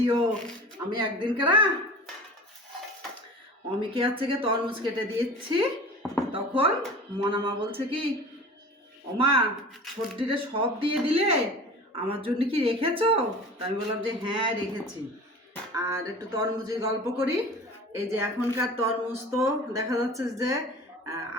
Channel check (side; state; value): both; normal; correlation 0.38